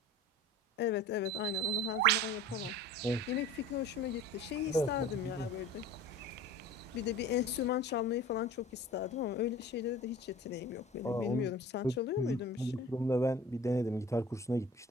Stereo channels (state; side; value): normal; both; correlation 0.41